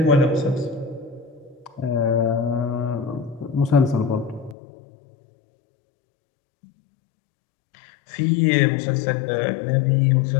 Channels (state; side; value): drops out; right; at 4.5 s